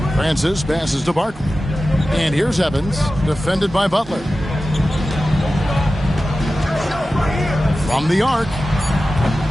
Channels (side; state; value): both; normal; correlation 0.94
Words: Francis passes to Barkley. And here's Evans, defended by Butler. From the arc,